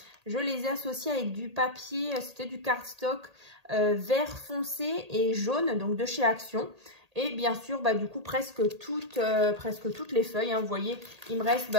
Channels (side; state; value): left; late; 1.8 ms